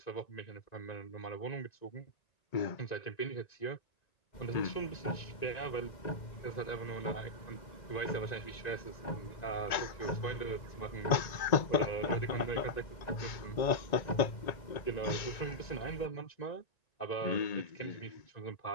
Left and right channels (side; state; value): right; late; 1.9 ms